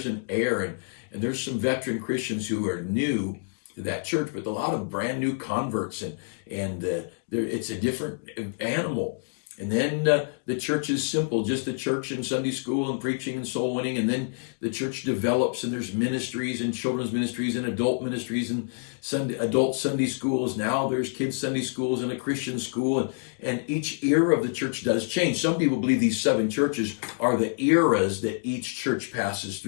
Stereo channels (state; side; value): silent; right; digital silence